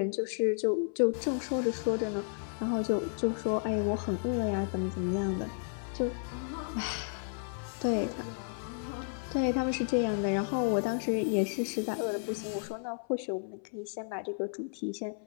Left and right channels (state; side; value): silent; right; 56 dB below the other